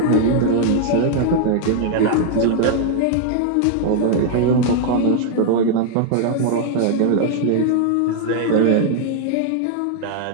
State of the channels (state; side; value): different; both; correlation 0.00